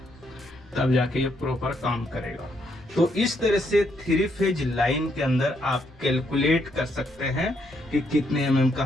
तब जाके ये प्रॉपर काम करेगा। तो इस तरह से 3 फेज लाइन के अंदर आप कैलकुलेट कर सकते हैं कि कितने mm का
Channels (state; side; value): normal; both; correlation 0.75